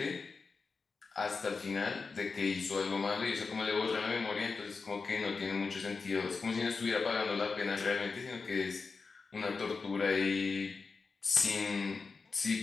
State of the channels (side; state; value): right; quieter; 4.6 dB